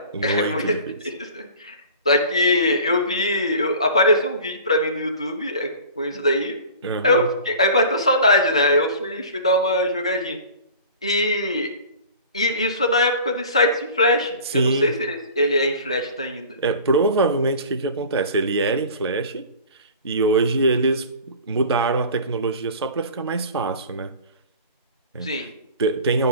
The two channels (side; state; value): both; inverted; correlation -0.42